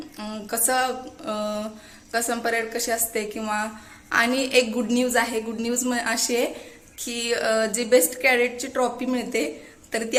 कसम परेड कशी असते किंवा. आणि एक गुड न्यूज आहे. गुड न्यूज अशी आहे की जी बेस्ट कॅडेटची ट्रॉफी मिळते तर ती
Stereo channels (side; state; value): both; identical; correlation 1.00